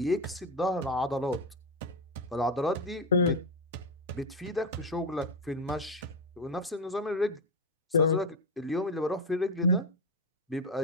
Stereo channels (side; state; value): both; normal; correlation 0.11